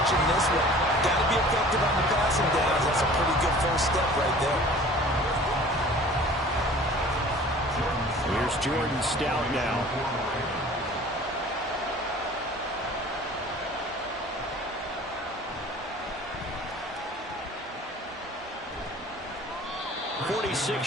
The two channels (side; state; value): both; normal; correlation 0.46